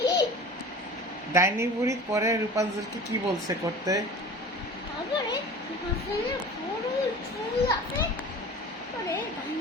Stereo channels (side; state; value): both; normal; correlation 0.39